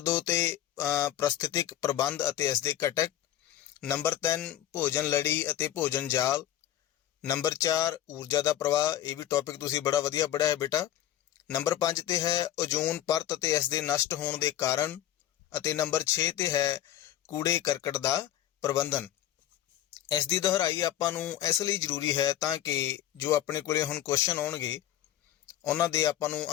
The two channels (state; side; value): quieter; right; 12.2 dB